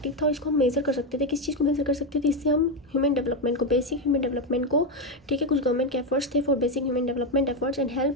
था और इसको हम मेज़र कर सकते थे. किस चीज़ को मेज़र कर सकते थे. इससे हम ह्यूमन डेवलपमेंट को, बेसिक ह्यूमन डेवलपमेंट को. ठीक है, कुछ गवर्नमेंट के एफर्ट्स थे for basic human development efforts and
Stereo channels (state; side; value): normal; both; correlation 0.09